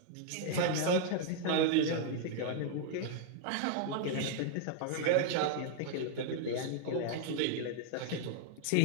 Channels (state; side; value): different; both; correlation 0.00